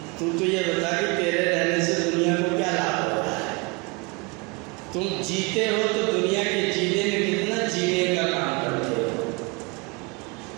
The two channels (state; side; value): quieter; left; 28.7 dB